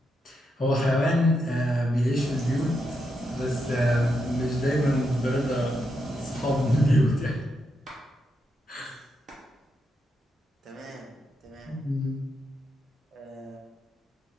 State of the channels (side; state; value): both; normal; correlation 0.83